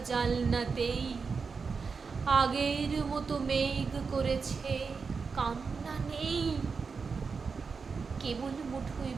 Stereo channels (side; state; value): left; quieter; 5.1 dB